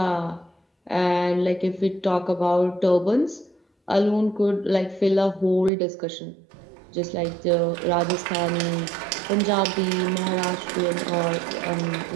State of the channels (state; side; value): drops out; left; at 5.7 s